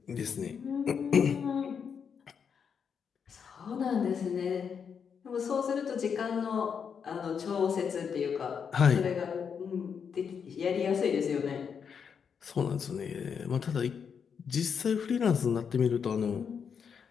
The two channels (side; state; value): right; quieter; 6.8 dB